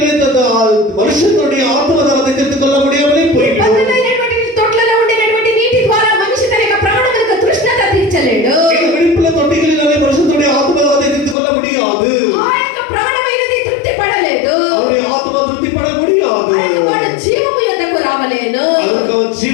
மனுஷனுடைய ஆத்ம தாகத்தை தீர்த்துக் கொள்ள முடியாமலே போய்விடும். బద్దలైనటువంటి తొట్లలో ఉండినటువంటి నీటి ద్వారా మనిషి తన యొక్క ప్రాణములకు తృష్ణత తీర్చలేడు. இந்த வெடிப்புள்ள தொட்டிகளினாலே மனுஷனுடைய ஆத்ம தாகத்தை தீர்த்துக் கொள்ள முடியாது. ఆ యొక్క ప్రాణమైనది తృప్తి పడలేదు. அவருடைய ஆத்மா திருப்திப்பட முடியாது. వాడు జీవము యొద్దకు రావలేను. அதற்கு அவன்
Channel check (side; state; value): right; drops out; at 11.4 s